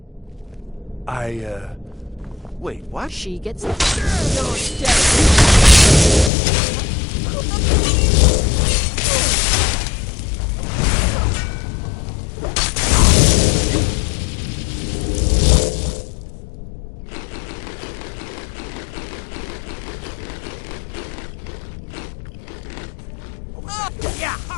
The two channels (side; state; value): right; drops out; at 6.3 s